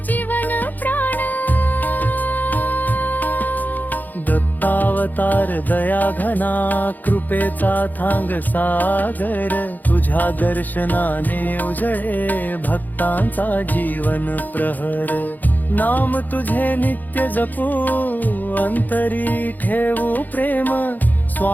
जीवन प्राण। दत्तावतार दया घना कृपेचा थांग सागर। तुझ्या दर्शनाने उजळे भक्तांचा जीवन प्रहर। नाम तुझे नित्य जपू अंतरी ठेवू प्रेम।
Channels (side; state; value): right; late; 0.084 ms